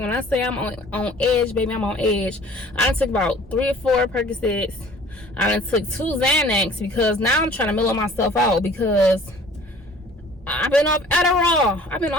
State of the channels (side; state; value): both; normal; correlation 0.50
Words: I say I'm on edge, baby, I'm on edge. I done took about 3 or 4 Percocets. I done took 2 Xanax because now I'm trying to mellow myself out because I've been off